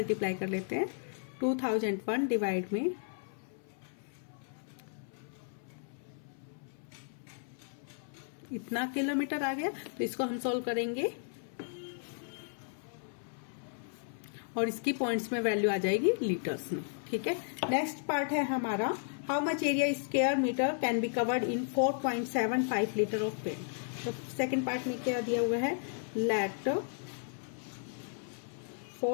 कर लेते हैं। 2001 डिवाइड में इतना किलोमीटर आ गया, तो इसको हम सॉल्व करेंगे और इसकी पॉइंट्स में वैल्यू आ जाएगी लीटर्स में। ठीक है, नेक्स्ट पार्ट है हमारा, how much area square metre can be covered in 4.75 litre of paint. तो सेकंड पार्ट में क्या दिया हुआ है, let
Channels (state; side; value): silent; right; 55 dB below the other